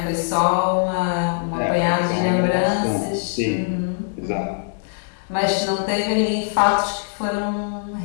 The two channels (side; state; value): right; silent; digital silence